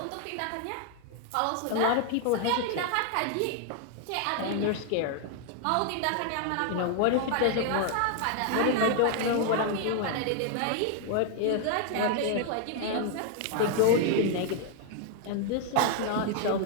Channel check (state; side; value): different; both; correlation 0.00